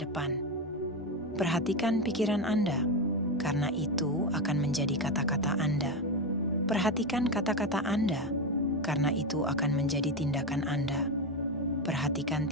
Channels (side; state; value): both; normal; correlation 0.13